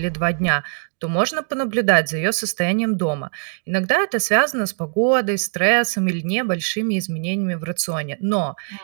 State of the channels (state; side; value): silent; left; 65 dB below the other